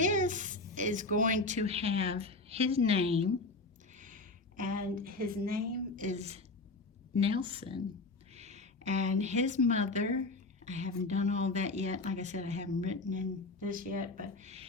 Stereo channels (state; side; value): quieter; right; 3.3 dB